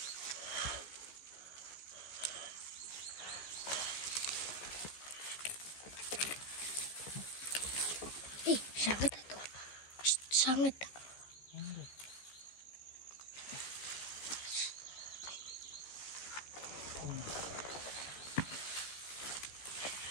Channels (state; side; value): late; right; 15 ms